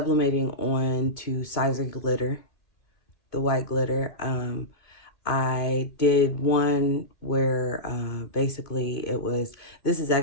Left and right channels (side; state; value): right; late; 2.2 ms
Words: on to Sizer glitter, the white glitter. I did one where basically this is